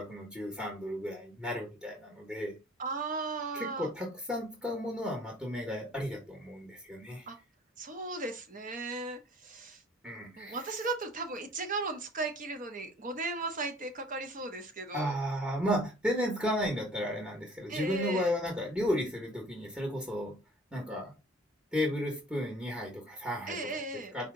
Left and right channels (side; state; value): both; normal; correlation 0.52